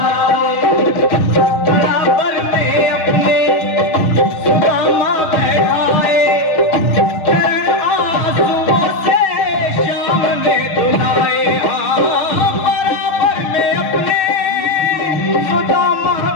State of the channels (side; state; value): right; late; 6.3 ms